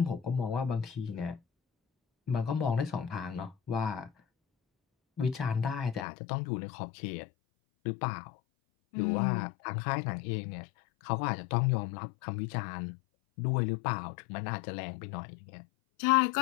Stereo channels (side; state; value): right; drops out; at 6.1 s